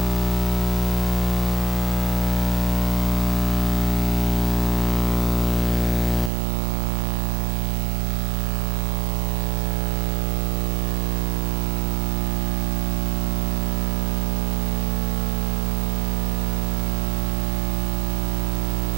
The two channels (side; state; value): left; drops out; at 6.3 s